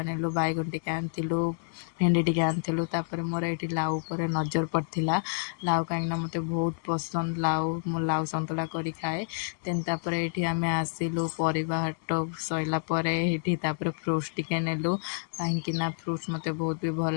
नेलु बैगन टे आनिलु भेंडी टे आनिलु तापर मोर ये लाउ पर नजर पड़ता लाउ कहीं मत बहुत पसंद लाउ मो लाउ सतुला कर खाए देन तापर ये आम आसिलु परिवा हाट सैला फ्रूट्स टिके नेलु कहीं फ्रूट्स मत बहुत भी भल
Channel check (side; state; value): right; silent; digital silence